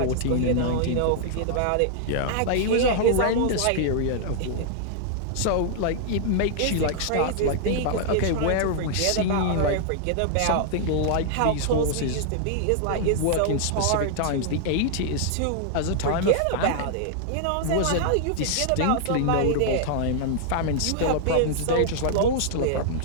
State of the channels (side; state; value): both; different; correlation -0.01